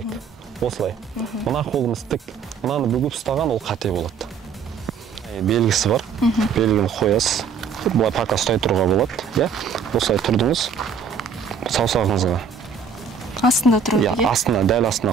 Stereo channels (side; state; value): left; quieter; 6.2 dB